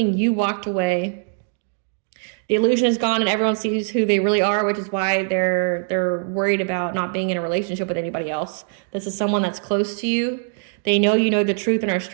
you walked away. The illusion is gone and everyone sees who they really are, which is why they're worried about not being in a relationship with anybody else. This is someone that's close to you. They know you know the truth and are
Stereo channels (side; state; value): left; silent; digital silence